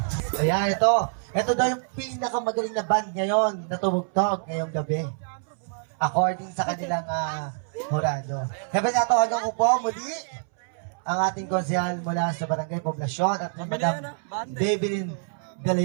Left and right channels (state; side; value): silent; left; 61 dB below the other